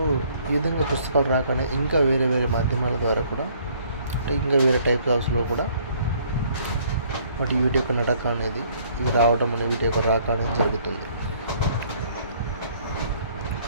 ఈ విధంగా పుస్తకాలు రాకనే ఇంకా వేరే మాధ్యమాల ద్వారా కూడా అంటే ఇంకా వేరే టైప్ ఆఫ్స్లో కూడా వీటి యొక్క నడక అనేది ఇవి రావడం అనేది వీటి యొక్క రాక అనేది జరుగుతుంది.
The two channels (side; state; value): both; inverted; correlation -0.61